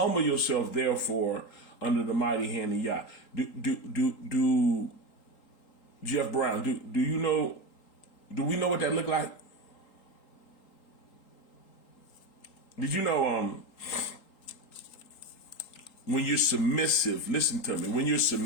yourself, therefore, under the mighty hand of Yah. Do Jeff Brown, do you know, do we know what that look like? Did you know when you're submissive, listen to me, when you're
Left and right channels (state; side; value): late; right; 3.8 ms